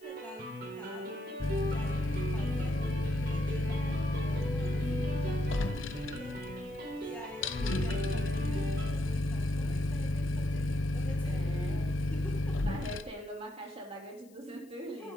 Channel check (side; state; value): left; noise; hiss, 29 dB below the sound